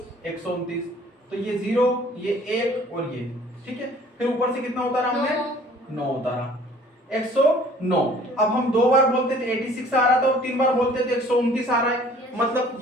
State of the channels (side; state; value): both; normal; correlation 0.53